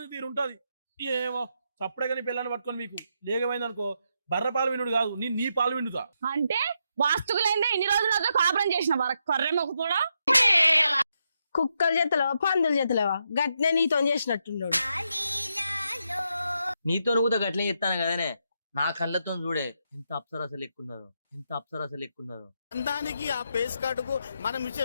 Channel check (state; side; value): inverted; both; correlation -0.81